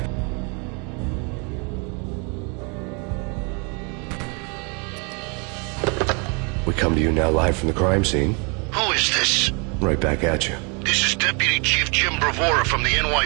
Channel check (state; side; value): quieter; left; 33.6 dB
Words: We come to you now live from the crime scene. Who is this? Right back at you. This is Deputy Chief Jim Bravura from the